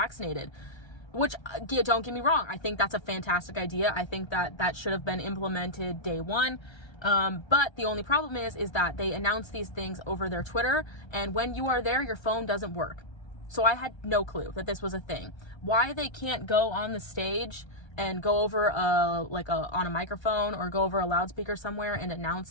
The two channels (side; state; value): right; late; 1.3 ms